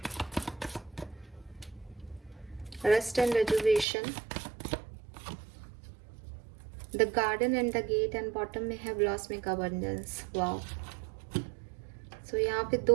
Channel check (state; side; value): drops out; left; at 3.9 s